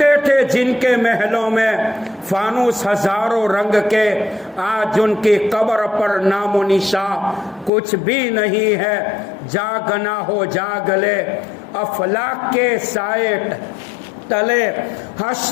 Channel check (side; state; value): right; drops out; at 7.7 s